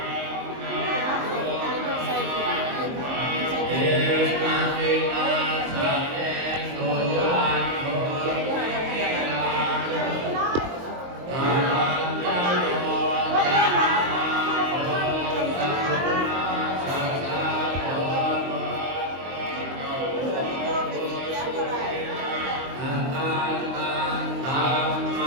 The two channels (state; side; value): late; left; 23 ms